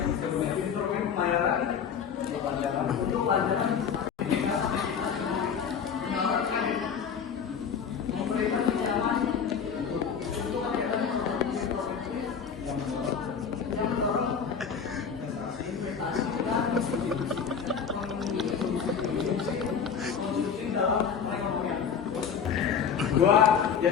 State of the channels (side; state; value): right; quieter; 6.9 dB